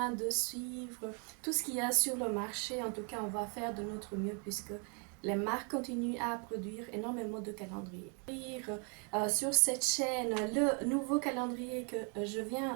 de suivre tout ce qu'il y a sur le marché. En tout cas, on va faire de notre mieux puisque les marques continuent à produire énormément de calendriers. Sur cette chaîne, le nouveau calendrier que je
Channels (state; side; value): quieter; left; 37.7 dB